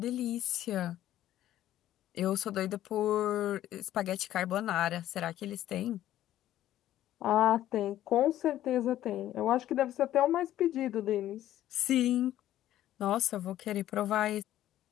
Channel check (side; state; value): right; quieter; 13.0 dB